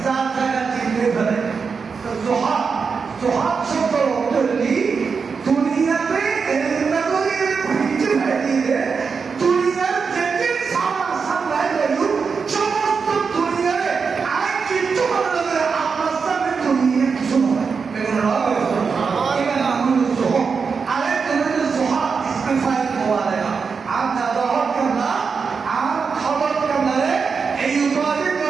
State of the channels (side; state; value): left; quieter; 5.4 dB